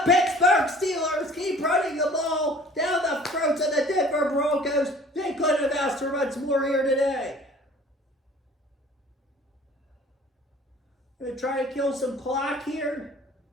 Pittsburgh Steelers keep running the ball down the throats of the Denver Broncos. They couldn't have asked for much more here today. Going to try to kill some clock here.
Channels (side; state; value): both; normal; correlation 0.49